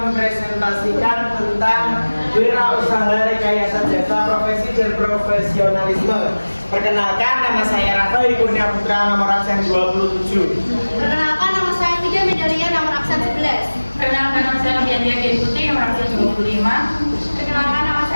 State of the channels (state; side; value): inverted; both; correlation -1.00